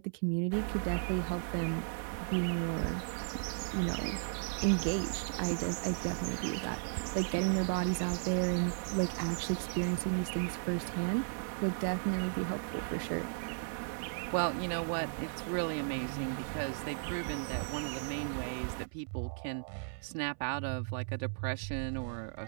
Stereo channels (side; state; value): left; silent; 54 dB below the other